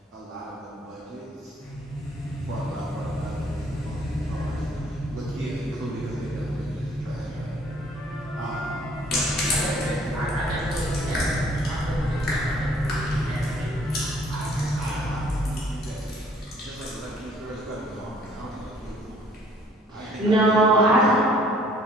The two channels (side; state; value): both; normal; correlation 0.59